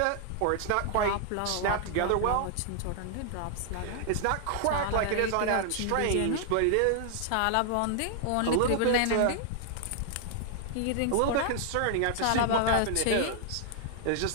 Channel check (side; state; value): both; different; correlation 0.00